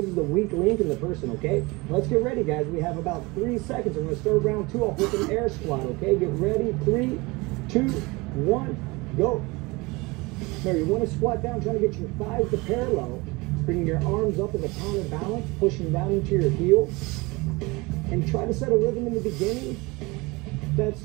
the weak link in the person, okay? Now let's get ready, guys. We have about 3 seconds. We're going to start round 2 off with an air squat, okay? Get ready. 3, 2, 1, go. Now you want to squat down, trying to get your thighs to parallel, bringing your arms up as a counterbalance, pushing down into your heel, and try to set a rhythm in the beginning that's,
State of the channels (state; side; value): quieter; left; 24.3 dB